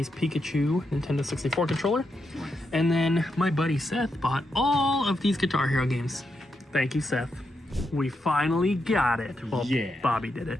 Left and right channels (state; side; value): normal; both; correlation 0.84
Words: Pikachu Nintendo 64 controller. And then my buddy Seth bought all of these Guitar Hero games. Thank you, Seth. We finally got it. Well, Yeah. Bobby did